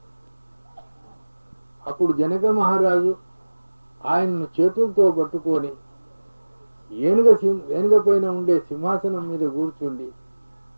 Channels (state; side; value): inverted; both; correlation -1.00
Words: అప్పుడు జనక మహారాజు ఆయన్ను చేతులతో పట్టుకొని ఏనుగ పైన ఉండే సింహాసనం మీద కూర్చుండి